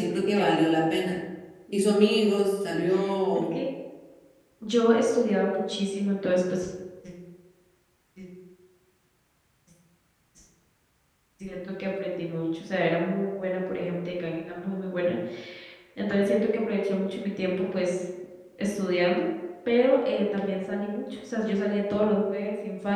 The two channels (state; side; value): identical; both; correlation 1.00